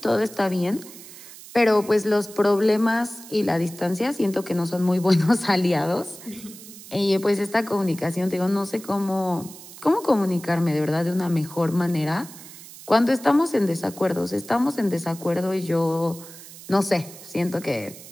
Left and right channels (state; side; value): noise; right; hiss, 17 dB below the sound